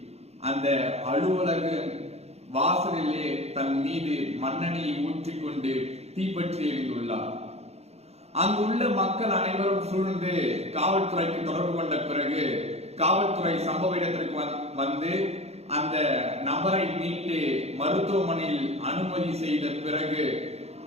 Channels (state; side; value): late; left; 0.31 ms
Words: அந்த அலுவலக வாசலிலே தன் மீது மண்ணெண்ணெயை ஊற்றிக்கொண்டு தீப்பற்றி எரிந்துள்ளார். அங்குள்ள மக்கள் அனைவரும் சூழ்ந்து காவல்துறைக்கு தொடர்பு கொண்ட பிறகு காவல்துறை சம்பவ இடத்திற்கு வந்து அந்த நபரை மீட்டு மருத்துவமனையில் அனுமதி செய்த பிறகு